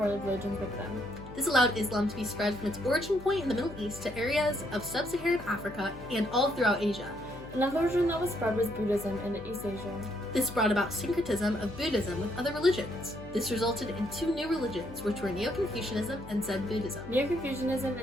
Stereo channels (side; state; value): left; noise; hum, 16 dB below the sound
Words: religions with them. This allowed Islam to be spread from its origin point in the Middle East to areas of sub-Saharan Africa and all throughout Asia. Another religion that was spread was Buddhism in East Asia. This brought about syncretism of Buddhism with other religions. This resulted in two new religions, which were Neo-Confucianism and Zen Buddhism. Neo-Confucianism